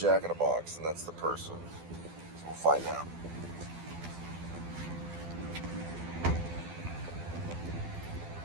in the Box, and that's the person. So we'll find out.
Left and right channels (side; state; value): left; late; 12 ms